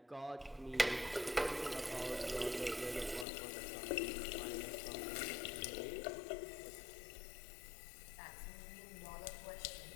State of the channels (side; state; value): right; drops out; at 3.2 s